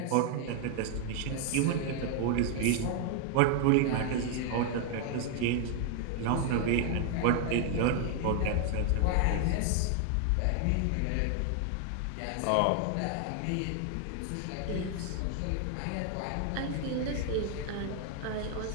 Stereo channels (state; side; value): different; both; correlation 0.00